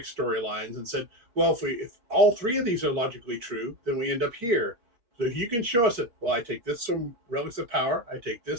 storylines and said, well, if all three of these are logically true, then we end up here. So if you can show us that, well, I take this from Relics of Power, I take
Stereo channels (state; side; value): late; left; 4.3 ms